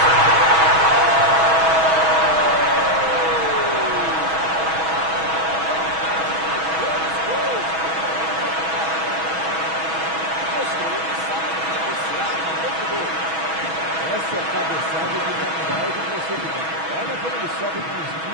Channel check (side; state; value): left; late; 6.2 ms